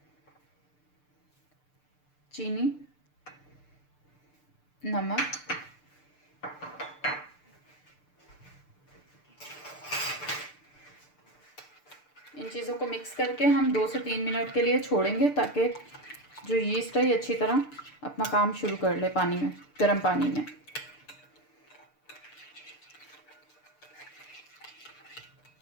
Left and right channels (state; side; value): late; right; 6.7 ms